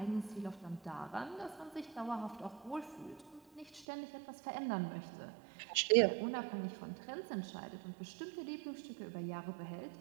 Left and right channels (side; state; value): left; drops out; at 3.9 s